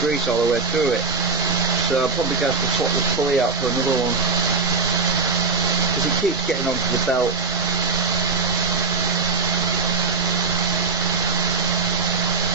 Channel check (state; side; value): quieter; left; 4.4 dB